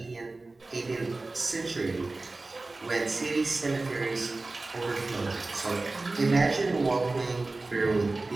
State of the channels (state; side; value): quieter; left; 3.2 dB